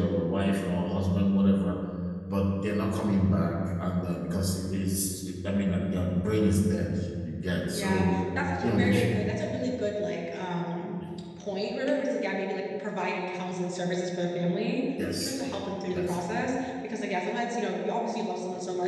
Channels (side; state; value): both; identical; correlation 1.00